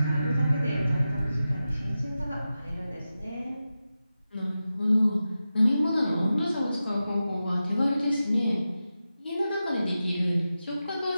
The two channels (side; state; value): both; inverted; correlation -0.92